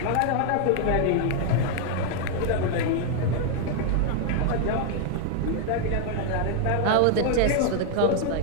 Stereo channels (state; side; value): different; both; correlation 0.00